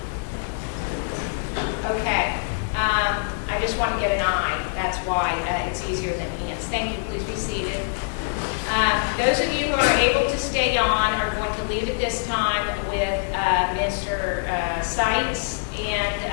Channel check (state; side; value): silent; right; digital silence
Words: Okay. I just want to get an eye. That's why it's easier than hands. Thank you. Please be seated. Those of you who are able to stay on are going to leave at this time with Mr. Seitz.